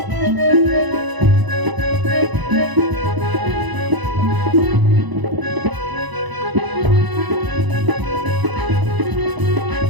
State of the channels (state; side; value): late; left; 1.0 ms